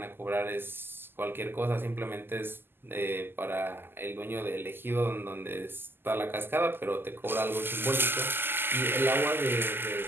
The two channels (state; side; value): late; left; 0.10 ms